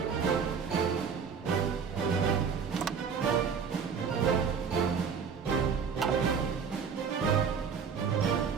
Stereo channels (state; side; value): quieter; left; 6.3 dB